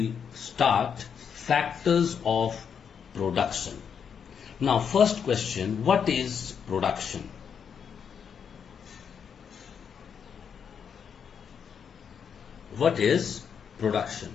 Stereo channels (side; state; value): right; quieter; 7.2 dB